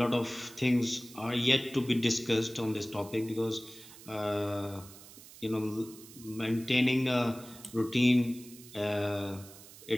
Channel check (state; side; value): noise; right; hiss, 18 dB below the sound